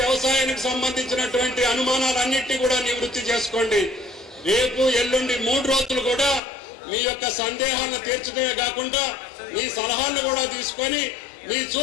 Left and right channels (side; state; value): right; drops out; at 6.4 s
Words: వ్యవసాయానికి సంబంధించినటువంటి అనుమానాలన్నింటినీ కూడా నివృత్తి చేసుకోండి. రేపు ఎల్లుండి 3 రోజులు కూడా మీ యొక్క సందేహాలను తీర్చడమే కాకుండా మీ సలహాలను కూడా తీసుకొని మీ